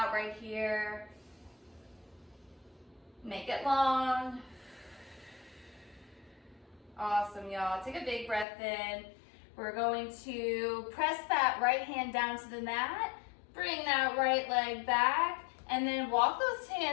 right here. Make it long. Awesome, y'all. Take a big breath in. We're going to press that right hand down to the mat. Bring that right leg back. And then walk those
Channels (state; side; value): drops out; right; at 8.5 s